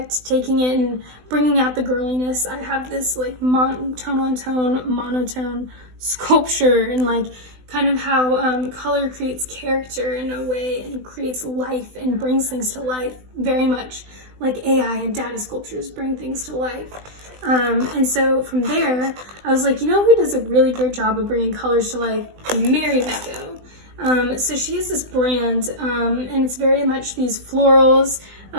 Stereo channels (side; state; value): left; late; 20 ms